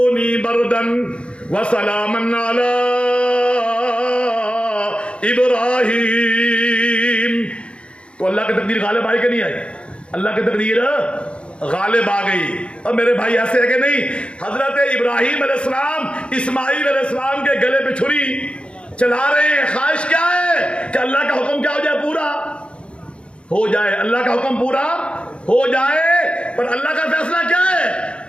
بردن وسلاما علی ابراہیم۔ تو اللہ کی تقدیر غالب آئی کہ نہیں آئی؟ اللہ کی تقدیر غالب آ گئی۔ اور میرے بھائی ایسے ہے کہ نہیں، حضرت ابراہیم علیہ السلام اسماعیل علیہ السلام کے گلے پہ چھری چلا رہے ہیں۔ خواہش کیا ہے؟ کہ اللہ کا حکم کیا ہو جائے؟ پورا ہو جائے، اللہ کا حکم پورا ہو جائے۔ پر اللہ کا فیصلہ کیا ہے؟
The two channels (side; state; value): right; late; 0.058 ms